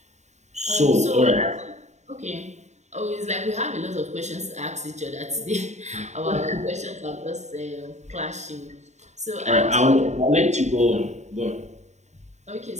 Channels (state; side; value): late; left; 0.33 ms